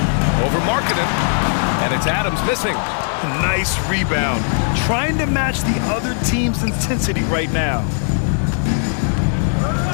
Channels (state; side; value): silent; right; digital silence